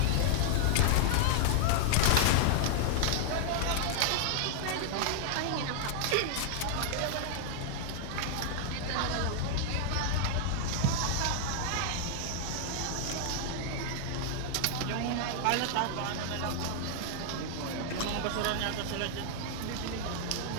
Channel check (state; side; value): different; both; correlation -0.01